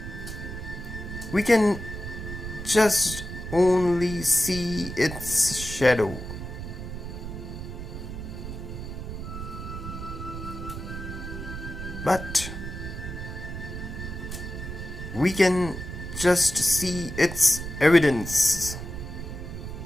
We can just only see its shadow. But we can just see its evidence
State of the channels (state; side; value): noise; right; rumble, 8 dB below the sound